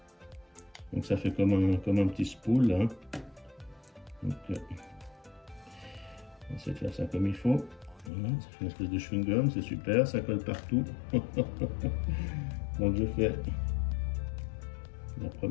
Donc ça fait comme un petit spool, hein. Donc on va essayer de faire ça comme il faut. Voilà, ça fait une espèce de chewing-gum, c'est super, ça colle partout. Donc je fais la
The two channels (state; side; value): drops out; right; at 8.1 s